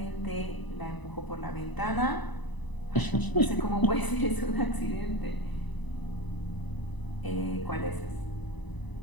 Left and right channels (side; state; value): right; late; 1.0 ms